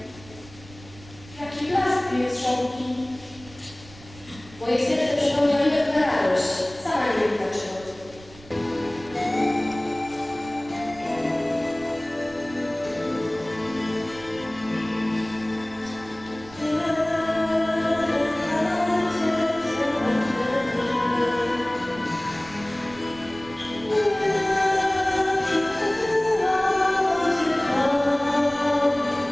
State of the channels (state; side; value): noise; right; rumble, 21 dB below the sound